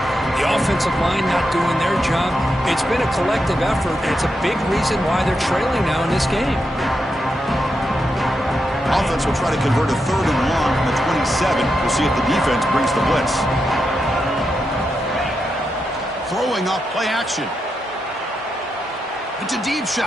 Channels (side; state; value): both; normal; correlation 0.85